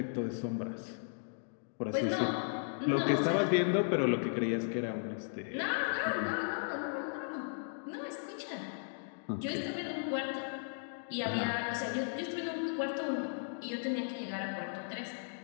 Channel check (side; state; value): right; silent; digital silence